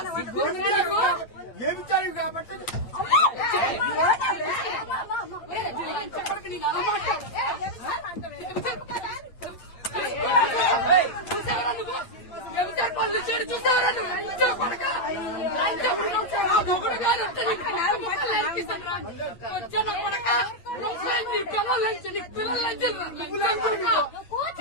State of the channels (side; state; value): right; late; 8.8 ms